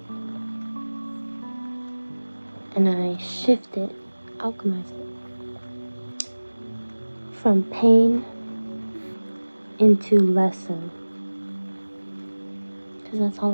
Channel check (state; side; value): inverted; both; correlation -1.00